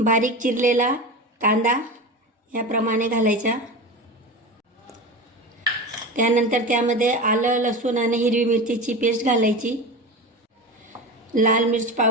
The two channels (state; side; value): normal; both; correlation 0.27